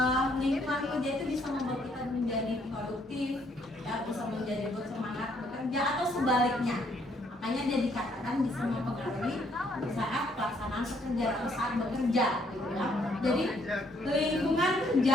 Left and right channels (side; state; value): both; normal; correlation 0.69